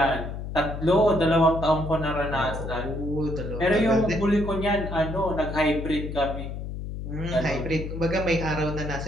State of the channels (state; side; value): noise; left; hum, 7 dB below the sound